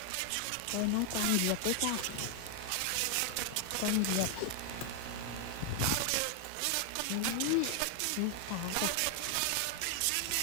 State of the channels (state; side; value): different; both; correlation 0.00